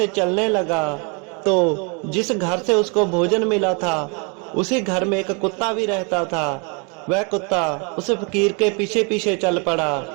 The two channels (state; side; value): quieter; left; 34.2 dB